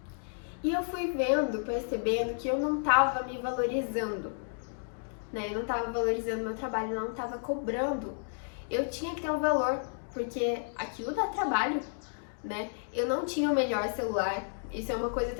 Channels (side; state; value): right; silent; digital silence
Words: E eu fui percebendo que eu não tava me valorizando, né? Eu não tava valorizando meu trabalho, eu não tava cobrando. Eu tinha que ter um valor, porque aquilo dá trabalho, né? Eu não tinha o melhor celular. Isso é uma coisa